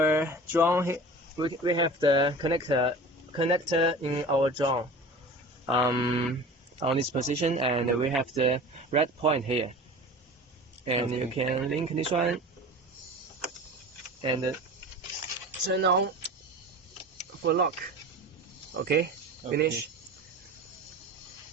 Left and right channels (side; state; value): both; normal; correlation 0.37